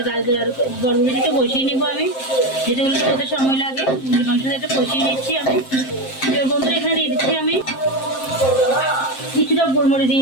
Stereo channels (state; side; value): late; right; 7.6 ms